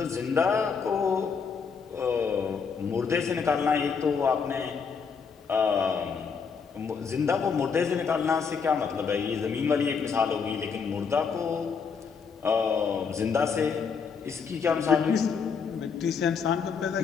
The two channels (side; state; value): right; quieter; 5.9 dB